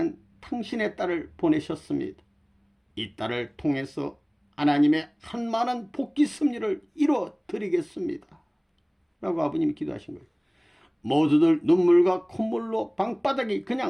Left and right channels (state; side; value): identical; both; correlation 1.00